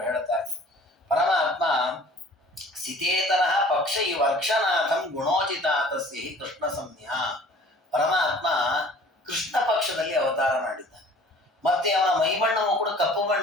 ಹೇಳ್ತಾರೆ. ಪರಮಾತ್ಮ ಸಿತೇತರಃ ಪಕ್ಷ ಈ ವರ್ಷನಾಥಂ ಗುಣೋಚಿತಾತಸ್ಯ ಹಿ ಕೃಷ್ಣ ಸಂಜ್ಞಾ. ಪರಮಾತ್ಮ ಕೃಷ್ಣ ಪಕ್ಷದಲ್ಲಿ ಅವತಾರ ಮಾಡಿದ್ದಾನೆ. ಮತ್ತೆ ಅವನ ಮೈಬಣ್ಣವು ಕೂಡ ಕಪ್ಪು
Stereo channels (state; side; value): normal; both; correlation 0.49